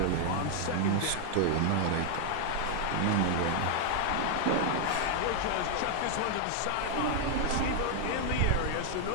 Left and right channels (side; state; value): both; different; correlation 0.00